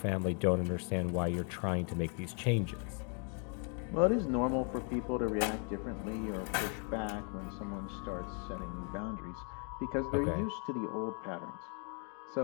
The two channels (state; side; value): quieter; right; 39.7 dB